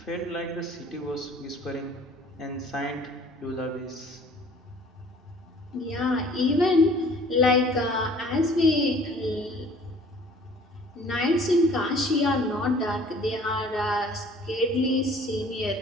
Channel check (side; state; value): both; normal; correlation 0.52